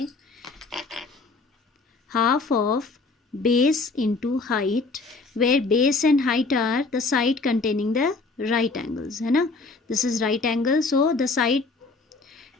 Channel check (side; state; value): right; quieter; 3.8 dB